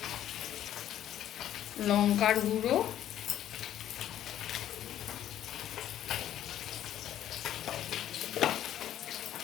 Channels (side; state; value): right; quieter; 11.5 dB